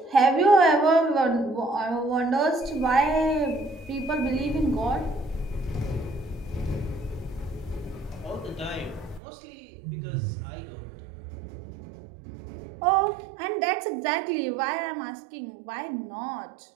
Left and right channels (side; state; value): left; drops out; at 9.2 s